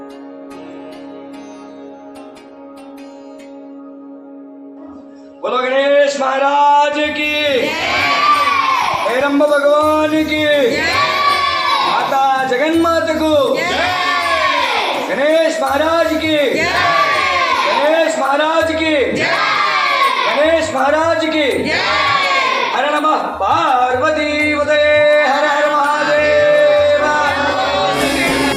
बोलो गणेश महाराज की, हेरंब भगवान की, माता जगन्माता को, गणेश महाराज की, गणेश महाराज की, गणेश महाराज की. हर नमः पार्वती पतये, हर हर महादेव.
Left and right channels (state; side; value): identical; both; correlation 1.00